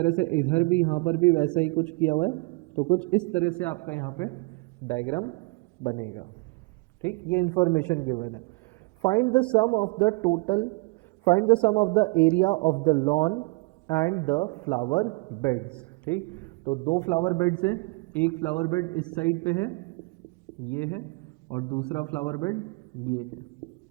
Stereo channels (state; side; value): quieter; left; 27.2 dB